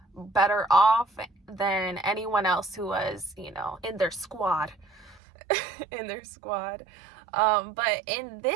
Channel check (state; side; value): drops out; left; at 5.2 s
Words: better off than anyone else who was, in their squad. But in